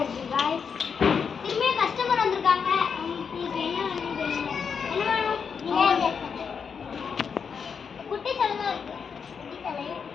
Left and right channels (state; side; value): quieter; right; 6.3 dB